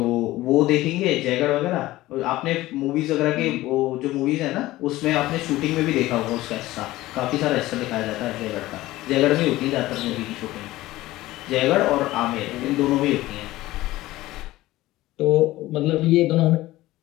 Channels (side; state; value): right; quieter; 17.1 dB